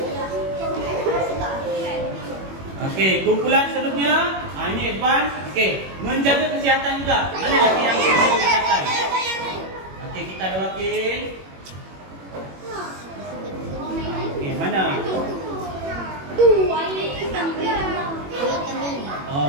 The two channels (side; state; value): left; late; 21 ms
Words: Okey, kumpulan seterusnya. Ini advance. Okey, menjaga kesihatan juga. Mana lagi yang menjaga kesihatan? Okey, kita ada wakil. Okey, mana?